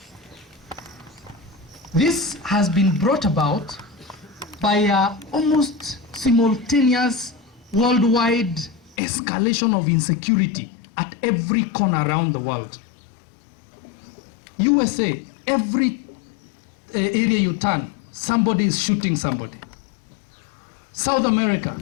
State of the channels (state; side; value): drops out; right; at 9.0 s